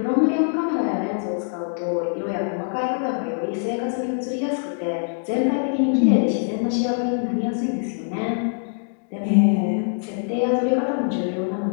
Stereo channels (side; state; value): right; silent; 63 dB below the other